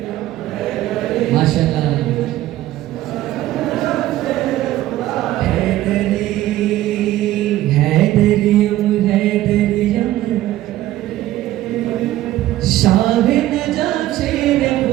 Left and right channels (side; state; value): left; quieter; 14.8 dB